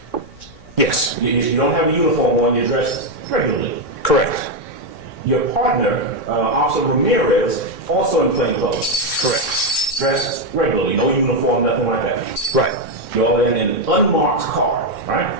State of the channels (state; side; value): late; right; 3.6 ms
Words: Yes. You don't have a uniform on, you're dressed regularly. Correct. Your partner, Officer Ramirez, also in plain clothes. Correct. Dressed regularly, no uniform, nothing like that. Right. You're all in an unmarked car, right?